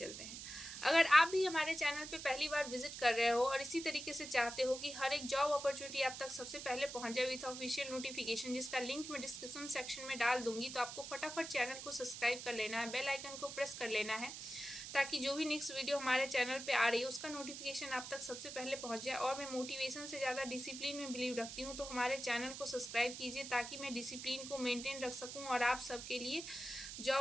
हैं। अगर आप भी हमारे चैनल पे पहली बार विजिट कर रहे हो और इसी तरीके से चाहते हो कि हर एक जॉब अपॉर्चुनिटी आप तक सबसे पहले पहुंच जाए विथ ऑफिशियल नोटिफिकेशन, जिसका लिंक मैं डिस्क्रिप्शन सेक्शन में डाल दूंगी, तो आपको फटाफट चैनल को सब्सक्राइब कर लेना है, बेल आइकन को प्रेस कर लेना है, ताकि जो भी नेक्स्ट वीडियो हमारे चैनल पे आ रही है उसका नोटिफिकेशन आप तक सबसे पहले पहुंच जाए। और मैं मोटिवेशन से ज़्यादा डिसिप्लिन में बिलीव रखती हूँ, तो हमारे चैनल को सब्सक्राइब कीजिए ताकि मैं डिसिप्लिन को मेंटेन रख सकूँ और आप सबके लिए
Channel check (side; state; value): right; noise; hiss, 9 dB below the sound